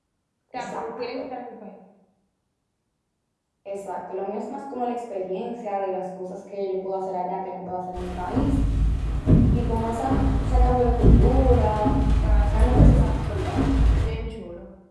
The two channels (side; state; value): both; identical; correlation 1.00